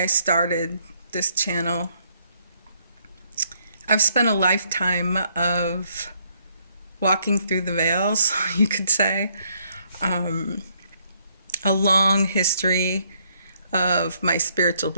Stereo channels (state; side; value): inverted; both; correlation -0.69